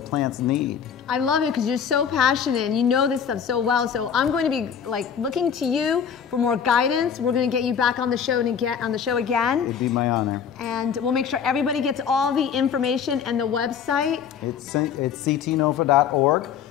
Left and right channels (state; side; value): quieter; right; 7.6 dB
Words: need. I love it because you're so passionate and you know this stuff so well. So I'm going to be like looking to you for more guidance. We're going to get you back on the show and get on the show again. It'd be my honor. And we'll make sure everybody gets all the information and the website. It's CTNOFA.org.